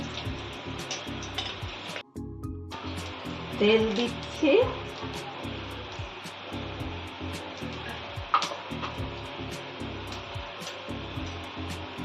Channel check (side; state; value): both; identical; correlation 1.00